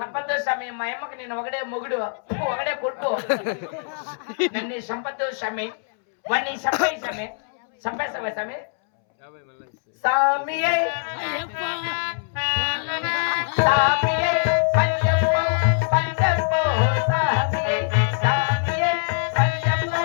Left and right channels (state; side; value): silent; right; 63 dB below the other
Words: సమీ మా అమ్మకి నేను ఒకడే మొగుడు ఒకడే కొట్టు నన్ను సంపద్దు సమీ వాడిని చంపే సమీ చంపేస్తావా సమీ సామియే సామియే పంజపో పంజపో సామియే సామియే పంజపో